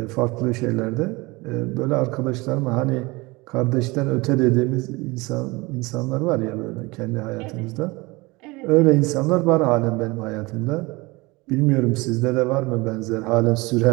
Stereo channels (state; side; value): quieter; left; 23.7 dB